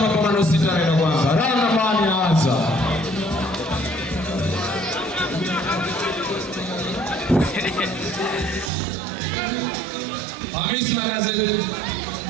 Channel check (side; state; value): left; drops out; at 8.7 s